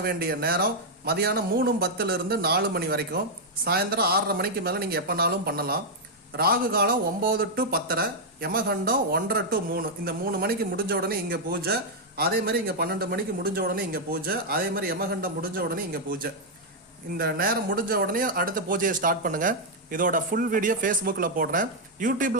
வேண்டிய நேரம் மதியானம் 3:10 4 மணி வரைக்கும், சாயந்தரம் 6:30 மணிக்கு மேலே நீங்கள் எப்போனாலும் பண்ணலாம். ராகு காலம் 9 to 10:30, யமகண்டம் 1:30 to 3. இந்த 3 மணிக்கு முடிஞ்ச உடனே இங்கே பூஜை, அதே மாதிரி இங்கே 12 மணிக்கு முடிஞ்ச உடனே இங்கே பூஜை, அதே மாதிரி யமகண்டம் முடிஞ்ச உடனே இங்கே பூஜை. இந்த நேரம் முடிஞ்ச உடனே அடுத்த பூஜையை ஸ்டார்ட் பண்ணுங்கள். இதோட ஃபுல் வீடியோ ஃபேஸ்புக்கில் போடுறேன்.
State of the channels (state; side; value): normal; both; correlation -0.03